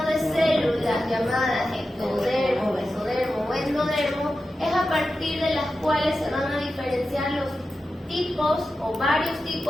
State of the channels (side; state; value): both; normal; correlation 0.92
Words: de células llamadas ectodermo, mesodermo o endodermo es a partir de las cuales se van a diferenciar los tipos o varios